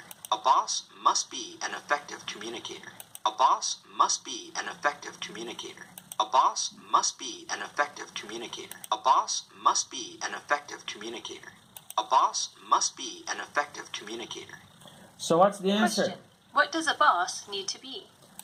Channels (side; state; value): both; identical; correlation 1.00